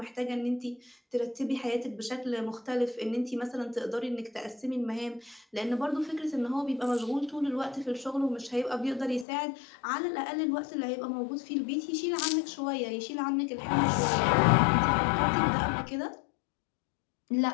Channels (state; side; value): drops out; right; at 9.2 s